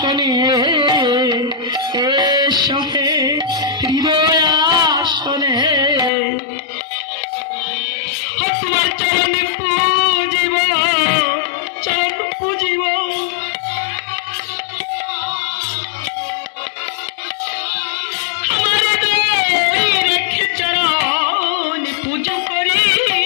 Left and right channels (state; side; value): drops out; right; at 6.1 s